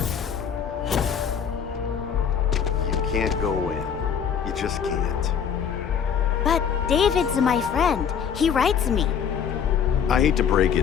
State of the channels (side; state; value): right; quieter; 7.6 dB